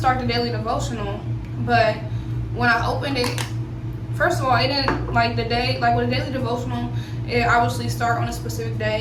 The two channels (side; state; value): both; identical; correlation 1.00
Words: the daily devotional, but when I opened it, first of all, it didn't the day, with a daily devotional, it obviously start on a specific